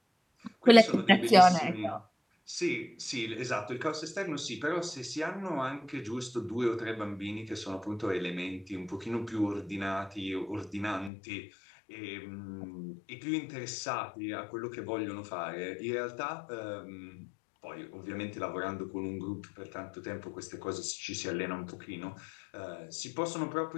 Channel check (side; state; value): right; drops out; at 11.1 s